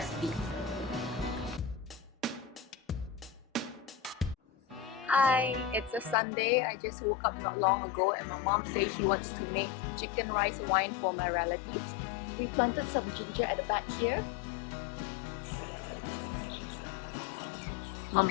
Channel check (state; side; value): drops out; right; at 6.2 s